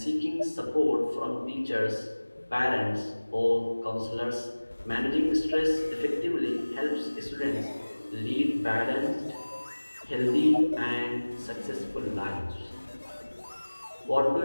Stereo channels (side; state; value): both; inverted; correlation -1.00